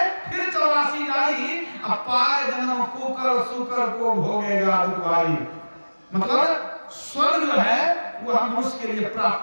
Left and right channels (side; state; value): both; inverted; correlation -1.00